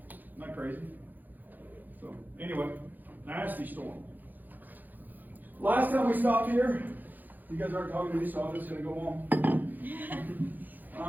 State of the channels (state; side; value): late; left; 0.085 ms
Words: Isn't that crazy? So, anyway, nasty storm. Last time we stopped here, you guys aren't talking to me, so I'm just going to go on.